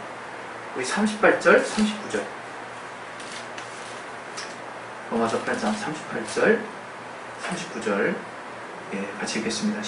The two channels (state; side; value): identical; both; correlation 1.00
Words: 우리 38절 39절. 로마서 8장 38절 39절. 예, 같이 읽겠습니다.